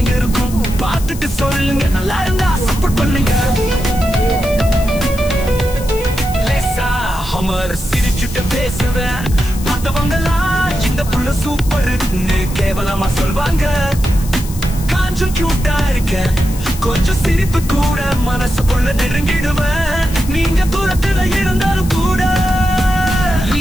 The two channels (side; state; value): left; noise; hiss, 14 dB below the sound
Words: இருக்கும், பார்த்துட்டு சொல்லுங்க. நல்லா இருந்தா சப்போர்ட் பண்ணுங்க. லேசா ஹமர் சிரிச்சுட்டு பேசுவேன், பார்த்தவங்கலாம் இந்த புள்ள சூப்பர்னு கேவலமா சொல்வாங்க. கொஞ்சம் கியூட்டா இருக்கேன், கொஞ்சம் சிரிப்பு கூட மனசுக்குள்ள நெருங்கிடுவேன். நீங்க தூரத்துல இருந்தாலும் கூட